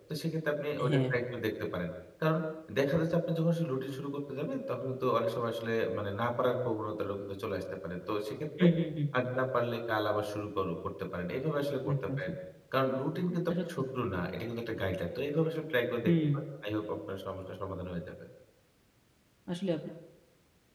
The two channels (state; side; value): identical; both; correlation 1.00